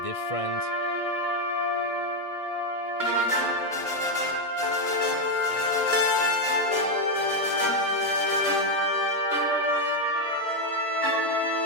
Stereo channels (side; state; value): right; late; 1.6 ms